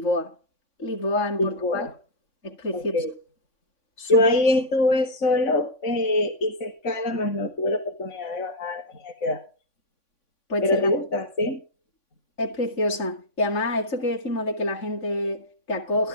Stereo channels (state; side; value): late; right; 3.6 ms